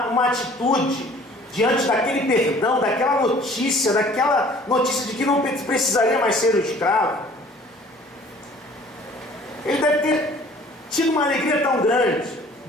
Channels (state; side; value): normal; both; correlation 0.52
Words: atitude diante daquele perdão, daquela notícia de que não precisaria mais ser um escravo. Ele deve ter tido uma alegria tão grande.